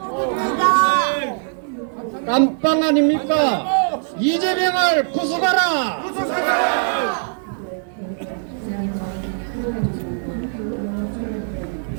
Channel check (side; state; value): left; silent; digital silence